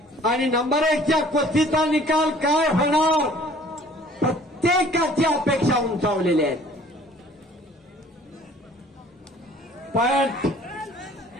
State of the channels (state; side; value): normal; both; correlation 0.53